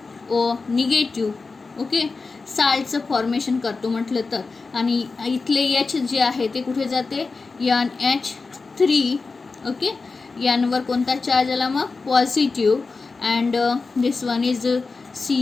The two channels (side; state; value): right; quieter; 4.1 dB